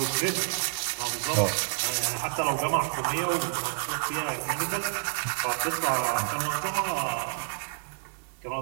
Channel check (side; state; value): left; silent; digital silence